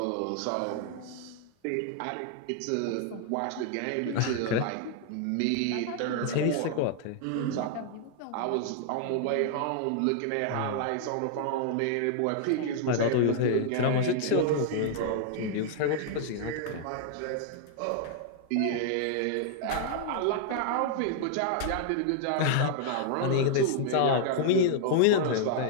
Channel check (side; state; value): both; different; correlation -0.01